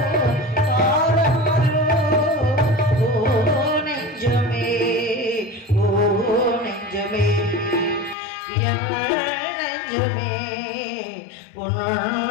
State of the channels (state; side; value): drops out; right; at 8.2 s